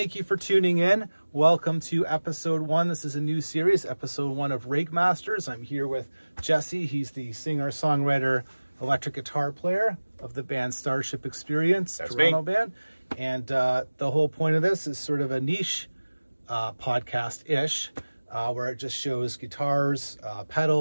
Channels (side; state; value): both; inverted; correlation -1.00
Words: you for tuning in. Welcome to episode 1. This is a new series, episode 1 of Rig Masters. I'm here with Jesse. He's the singer, songwriter, electric guitar player of the band Starship Experience, That's Toronto me. band. And the whole point of this is sort of a niche podcast-ish, where it just shows guitars,